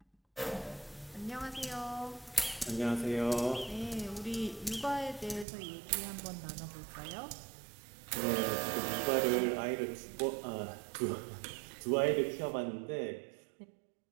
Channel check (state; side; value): drops out; left; at 5.5 s